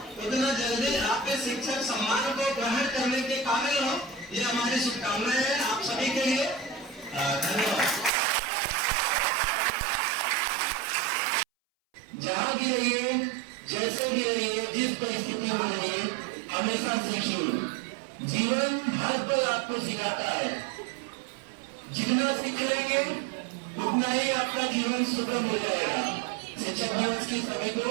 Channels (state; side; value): drops out; left; at 8.1 s